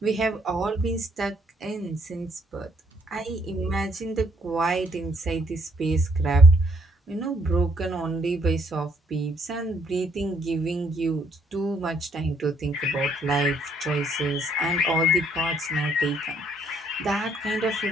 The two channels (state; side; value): normal; both; correlation 0.68